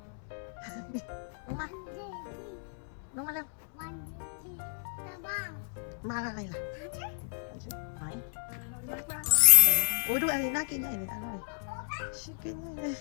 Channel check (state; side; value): silent; right; 56 dB below the other